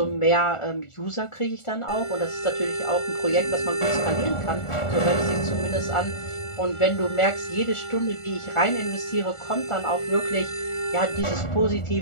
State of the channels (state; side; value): late; right; 1.4 ms